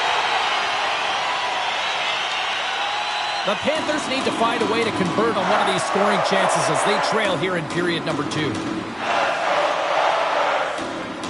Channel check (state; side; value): identical; both; correlation 1.00